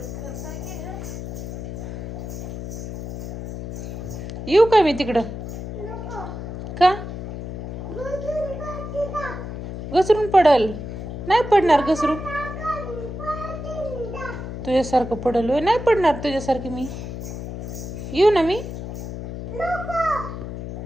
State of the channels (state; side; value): noise; left; hum, 7 dB below the sound